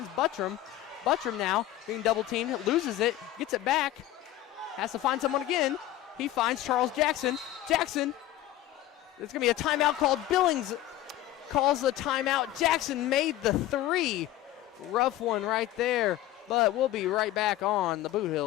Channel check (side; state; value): right; quieter; 13.9 dB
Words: Buttram. Buttram now being double teamed, loses it, gets it back, has to find someone again. He finds Charles Jackson. Jackson, there's going to be a timeout called. Billings calls the timeout. Jackson made the three. Rough one right there, but we'll be right back on the Boot